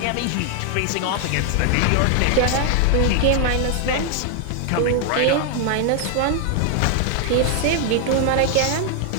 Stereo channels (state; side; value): different; both; correlation 0.00